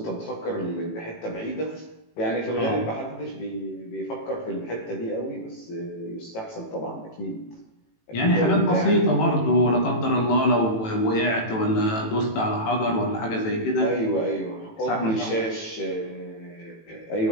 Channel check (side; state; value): right; late; 18 ms